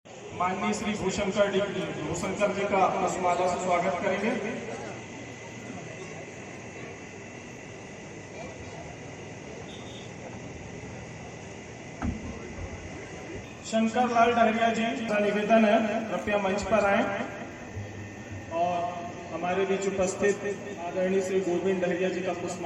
माननीय श्री भूशंकर जी का पुष्पमाला से स्वागत करेंगे। शंकर लाल डहरिया जी का निवेदन है, कृपया मंच पर आए और हमारे बीच उपस्थित आदरणीय श्री गोविंद डहरिया जी का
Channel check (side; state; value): both; identical; correlation 1.00